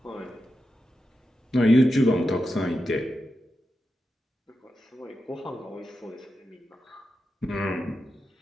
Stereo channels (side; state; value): both; normal; correlation 0.89